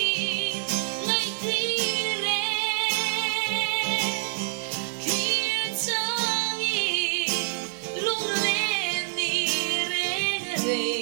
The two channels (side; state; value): left; silent; 59 dB below the other